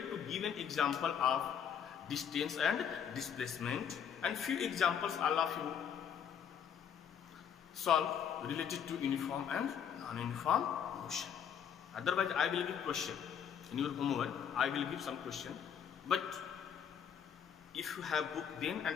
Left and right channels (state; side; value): quieter; right; 8.1 dB